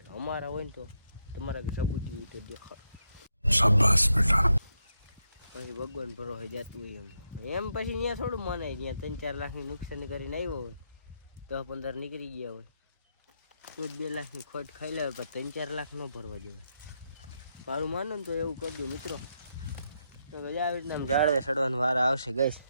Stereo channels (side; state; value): both; inverted; correlation -0.80